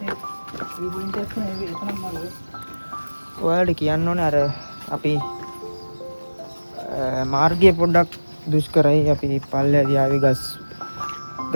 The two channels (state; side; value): inverted; both; correlation -1.00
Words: ඔයාලට කියන්න ඕනේ අර අපි මාර්ගය පොඩ්ඩක් දුෂ්කරයි. අපි පල්ලෙහාදී ආවේ